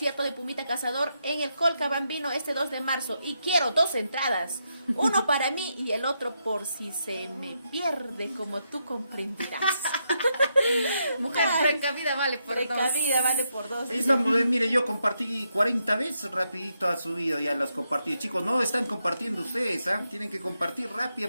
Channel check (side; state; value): both; inverted; correlation -0.81